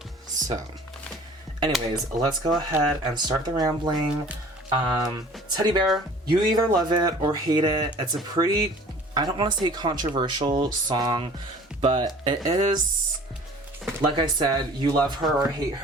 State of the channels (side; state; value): both; normal; correlation 0.47